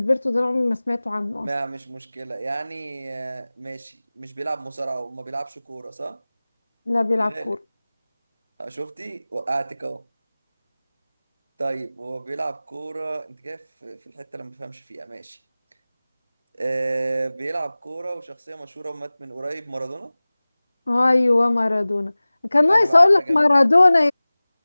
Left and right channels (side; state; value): both; inverted; correlation -0.99